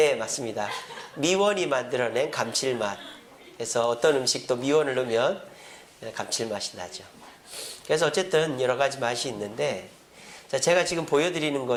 맞습니다. 미원이 만들어낸 감칠맛. 그래서 어떤 음식도 미원을 넣으면 감칠맛이 나죠. 그래서 어쨌든 여러 가지 맛이 있는데, 자, 제가 지금 보여드리는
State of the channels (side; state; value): both; identical; correlation 1.00